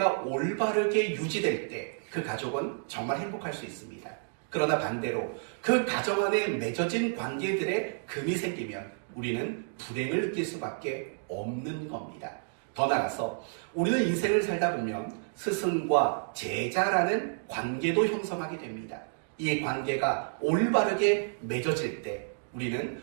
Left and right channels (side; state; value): left; silent; digital silence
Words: 올바르게 유지될 때 그 가족은 정말 행복할 수 있습니다. 그러나 반대로 그 가정 안에 맺어진 관계들에 금이 생기면 우리는 불행을 느낄 수밖에 없는 겁니다. 더 나아가서 우리는 인생을 살다 보면 스승과 제자라는 관계도 형성하게 됩니다. 이 관계가 올바르게 맺어질 때 우리는